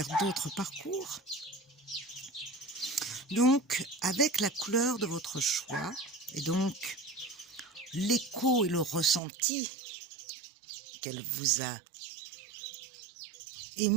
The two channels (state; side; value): drops out; left; at 9.2 s